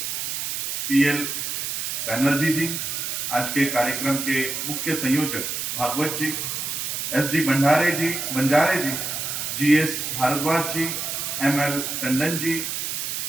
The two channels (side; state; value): right; noise; hiss, 3 dB below the sound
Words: पीएल बैनर्जी जी, आज के कार्यक्रम के मुख्य संयोजक भागवत जी, एसडी बंजारे जी, जीएस भारद्वाज जी, एमएल टंडन जी,